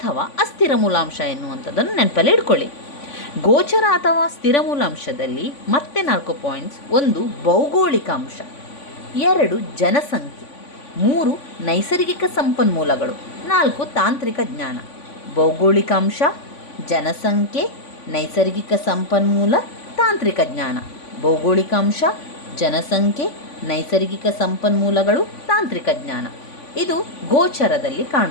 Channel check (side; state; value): right; late; 3.5 ms